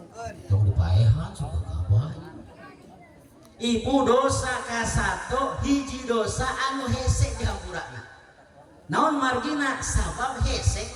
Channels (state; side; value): identical; both; correlation 1.00